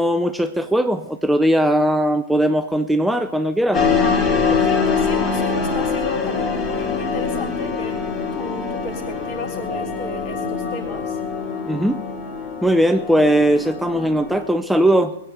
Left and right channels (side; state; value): both; normal; correlation 0.63